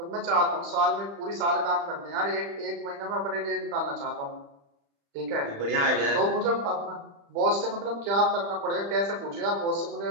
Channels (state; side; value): late; left; 35 ms